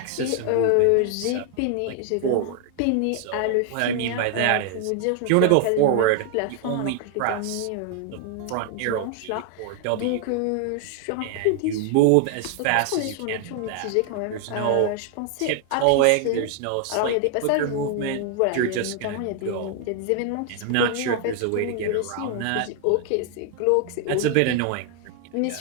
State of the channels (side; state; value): both; different; correlation 0.00